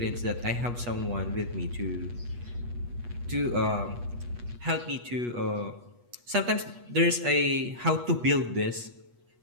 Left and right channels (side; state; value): left; late; 8.3 ms